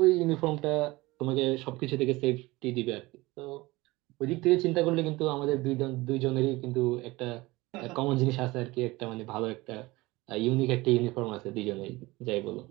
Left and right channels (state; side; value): quieter; left; 20.9 dB